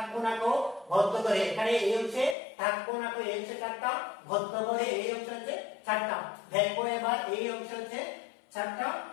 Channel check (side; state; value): right; drops out; at 2.4 s